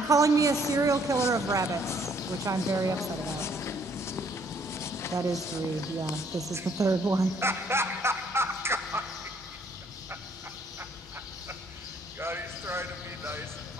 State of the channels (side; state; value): both; normal; correlation 0.65